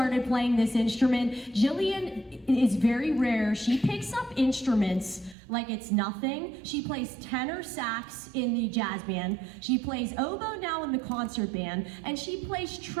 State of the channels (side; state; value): left; drops out; at 5.4 s